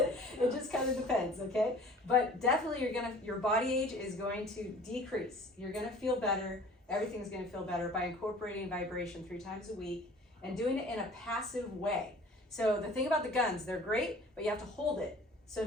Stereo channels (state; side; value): normal; both; correlation 0.47